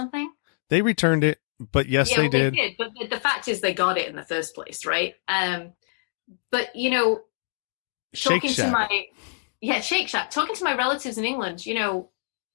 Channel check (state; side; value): silent; right; digital silence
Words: They returned it, but yes, Yeah, they well, did. they did. But the fact is, they got it in the first place, right? But you know, Shake talking Shack. to my Shake Shack, talking to my relatives in England, you know,